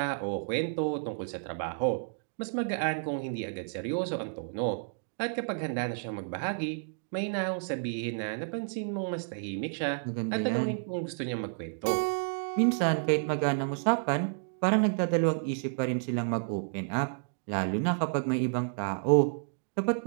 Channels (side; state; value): left; silent; digital silence